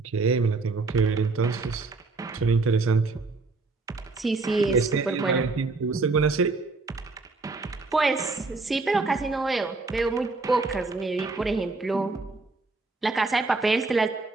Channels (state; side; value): quieter; left; 3.7 dB